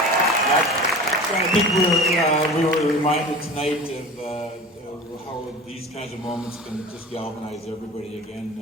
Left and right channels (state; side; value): normal; both; correlation 0.36